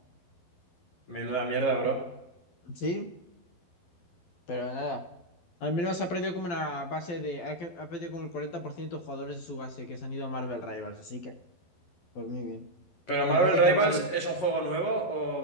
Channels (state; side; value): late; right; 12 ms